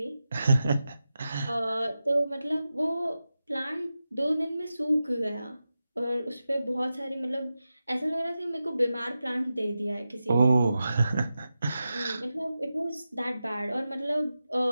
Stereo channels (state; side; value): inverted; both; correlation -0.92